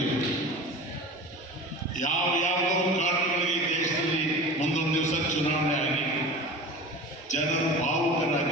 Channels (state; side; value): normal; both; correlation 0.34